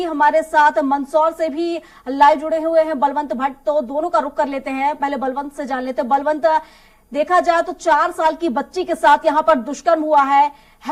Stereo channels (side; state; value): both; identical; correlation 1.00